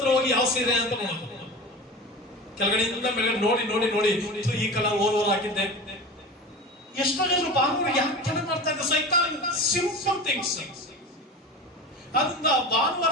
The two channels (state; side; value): normal; both; correlation 0.31